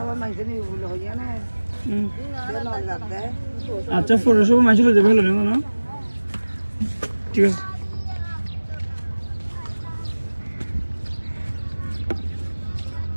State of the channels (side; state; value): both; inverted; correlation -1.00